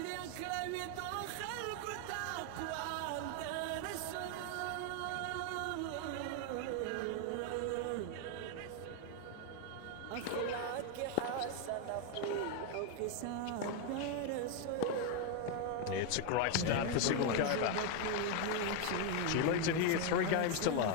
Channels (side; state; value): both; different; correlation 0.01